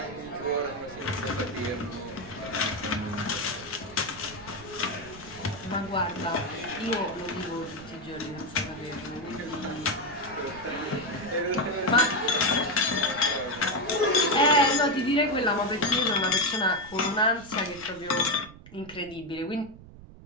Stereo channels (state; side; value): noise; right; rumble, 18 dB below the sound